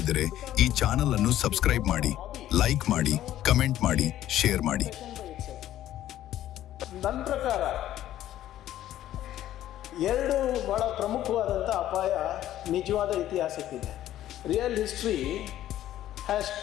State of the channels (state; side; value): quieter; right; 12.9 dB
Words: ಈ ಚಾನೆಲ್ ಅನ್ನು ಸಬ್ಸ್ಕ್ರೈಬ್ ಮಾಡಿ, ಲೈಕ್ ಮಾಡಿ, ಕಮೆಂಟ್ ಮಾಡಿ, ಶೇರ್ ಮಾಡಿ. ನನ್ನ ಪ್ರಕಾರ 2 ಬಹಳ ಪ್ರಮುಖವಾದಂಥ ಅಪಾಯ ನಿಜವಾದ ಇತಿಹಾಸಕ್ಕಿದೆ. Real history has